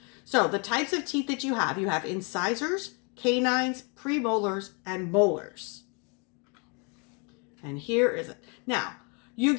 So the types of teeth that you have incisors, canines, premolars, and molars. And here is it. Now, you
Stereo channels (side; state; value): right; quieter; 34.1 dB